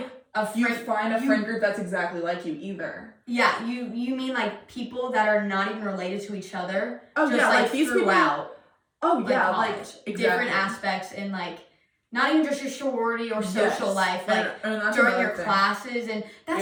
you friend, find a friend group that's exactly like you either. Yeah, you mean like people that are not even related to each other. Oh just yeah, like these throughout. People. Oh yeah, college. like exactly. Different aspects in like not even just your sorority or social life, like and during your thing. Classes, and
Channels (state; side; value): identical; both; correlation 1.00